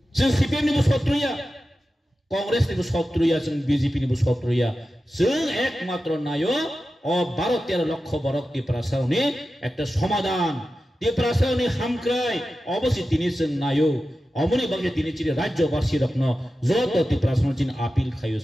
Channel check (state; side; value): normal; both; correlation 0.93